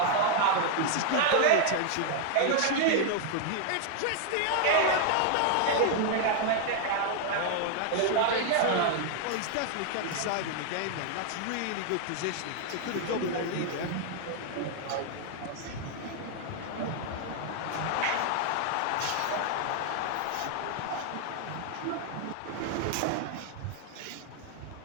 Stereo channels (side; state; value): both; different; correlation 0.00